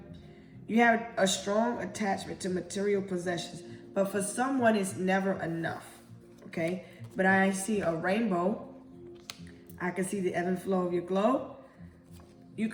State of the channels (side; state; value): both; identical; correlation 1.00